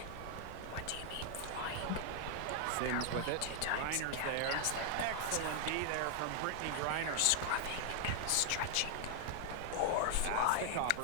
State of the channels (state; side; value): different; both; correlation 0.00